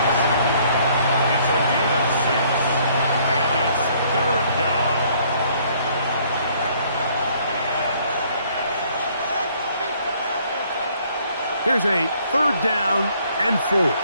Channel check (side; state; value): both; inverted; correlation -0.63